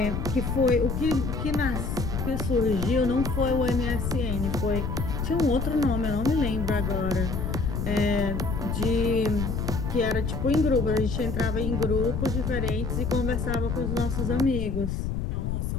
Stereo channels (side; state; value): left; noise; rumble, 2 dB below the sound